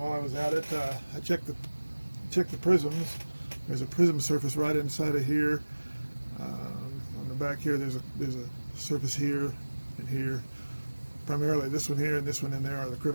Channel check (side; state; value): both; inverted; correlation -1.00